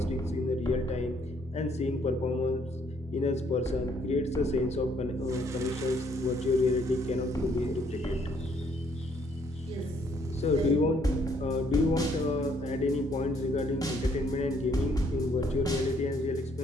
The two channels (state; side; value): normal; both; correlation 0.67